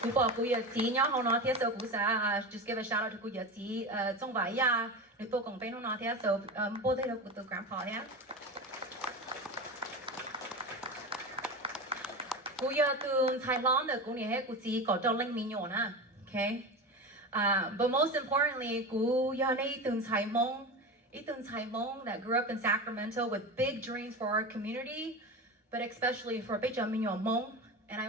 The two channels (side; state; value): both; normal; correlation 0.24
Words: kuya ti nya hono tia so kusa. Just give a shout out to kuya ti zong vai ya ni to kong pe no na tia so bo de lo kuto grandpa ya. Kuya tu Thailand de kunia he kusi ko zhao ling mi nyo na. Okay. But most importantly, Ethan Hmong that grew up in Sacramento with big dreams for our community, but especially for Hmong, and I